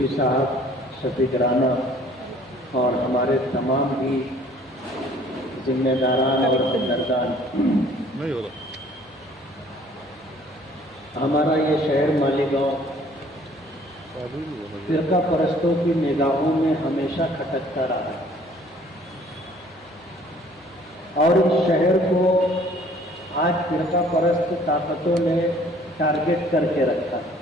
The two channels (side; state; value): both; normal; correlation 0.56